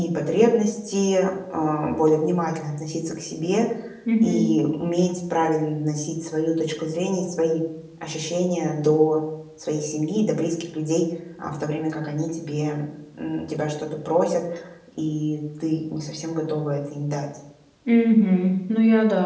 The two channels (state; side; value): identical; both; correlation 1.00